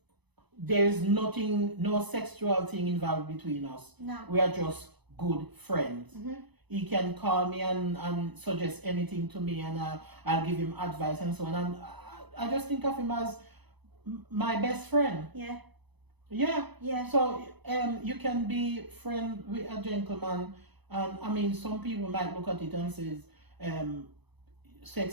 there's nothing, no sexual thing involved between us. No. We are just good friends. He can call me and suggest anything to me, and I'll give him advice and so on. And I just think of him as my best friend. Yeah. Yeah. Yeah. So you can be friend with a gentleman, and I mean, some people might look at it and says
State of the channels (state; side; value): late; left; 0.99 ms